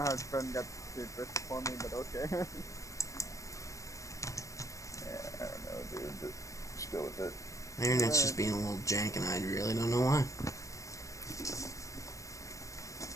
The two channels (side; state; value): right; late; 0.16 ms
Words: Trent got to first for me, but okay. yeah, I don't know, dude, but just go with it. My internet's just being a little jank, and I really don't know why.